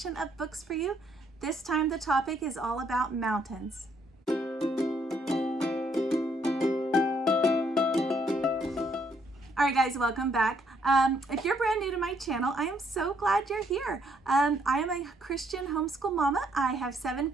of books for you. This time the topic is all about mountains. All right guys, welcome back. If you're brand new to my channel, I am so glad you're here. I am a Christian homeschool mama. I have 7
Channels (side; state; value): both; normal; correlation 0.70